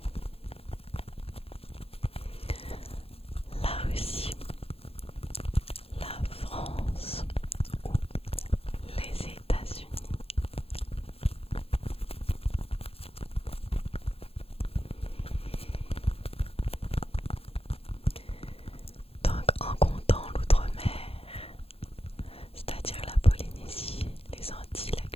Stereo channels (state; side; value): late; right; 0.28 ms